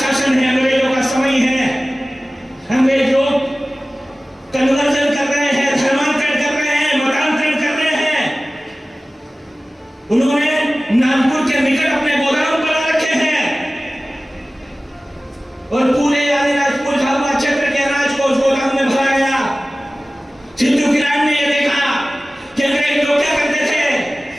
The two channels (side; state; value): both; normal; correlation 0.97